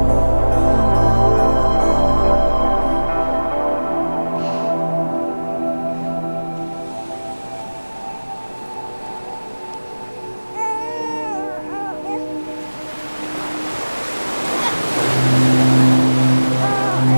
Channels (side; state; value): both; inverted; correlation -1.00